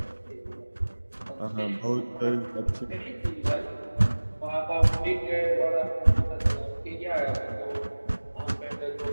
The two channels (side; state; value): both; inverted; correlation -1.00